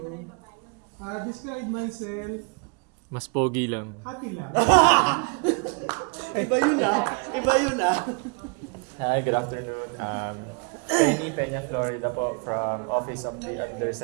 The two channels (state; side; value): quieter; left; 35.1 dB